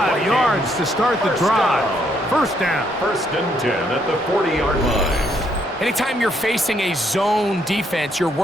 yards to start the drive? 1st down. 1st and 10 at the 40-yard line. Anytime you're facing a zone defense, you're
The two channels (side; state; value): both; normal; correlation 0.72